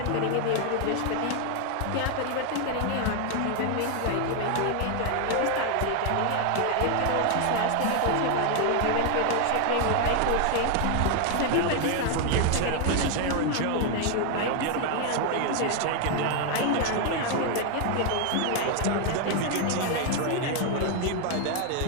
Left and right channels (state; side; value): different; both; correlation 0.00